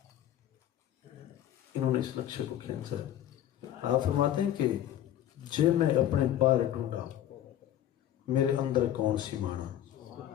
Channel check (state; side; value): quieter; right; 11.6 dB